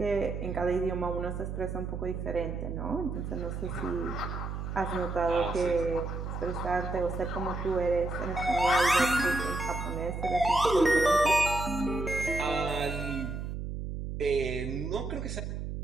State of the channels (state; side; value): noise; right; hum, 5 dB below the sound